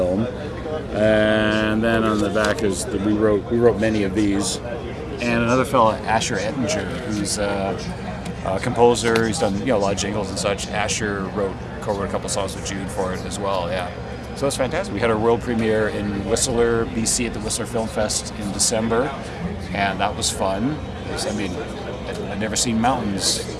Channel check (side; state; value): both; identical; correlation 1.00